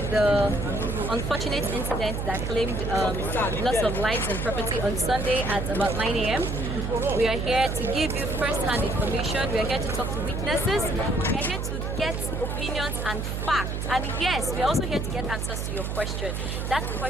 the unfortunate incident that claimed loss of lives and property on Sunday at about 9 a.m. We are here to give you first-hand information. We are here to talk to witnesses. We are here to get opinions and facts. And yes, we are also here to get answers to your question. That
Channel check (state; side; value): noise; right; hum, 3 dB below the sound